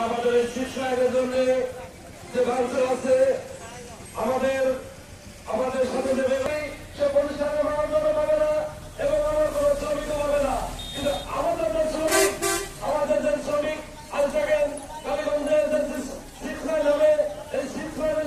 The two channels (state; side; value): identical; both; correlation 1.00